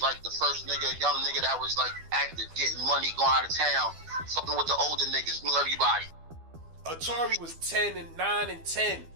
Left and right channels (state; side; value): late; left; 12 ms